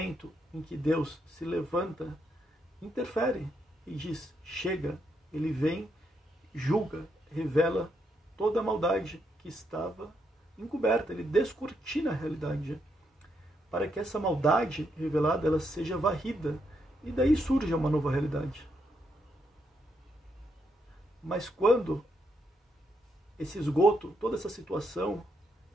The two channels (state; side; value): normal; both; correlation 0.78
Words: em que Deus se levanta, interfere e diz: chega. Ele vem, julga, revela toda a maldade que estava encoberta. Ele descortina a realidade, para que essa maldade revelada ela seja varrida, e daí surge uma nova realidade. Mas quando esse esgoto, toda essa situação